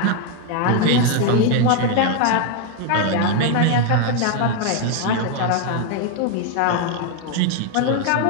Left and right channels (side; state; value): both; different; correlation 0.01